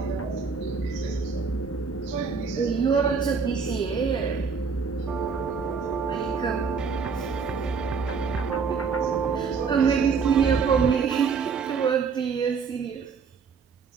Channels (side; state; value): left; quieter; 5.6 dB